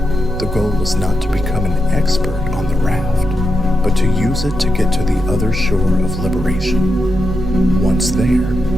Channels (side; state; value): both; normal; correlation 0.86